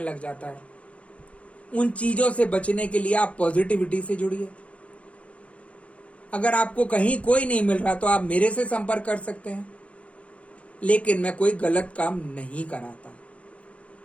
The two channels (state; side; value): late; right; 0.063 ms